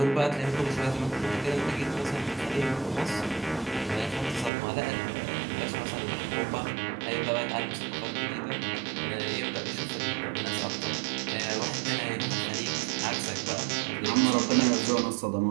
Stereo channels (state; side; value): drops out; left; at 4.5 s